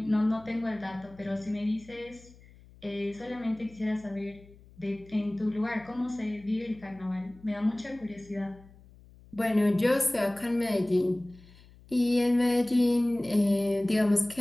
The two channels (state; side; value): noise; left; hum, 24 dB below the sound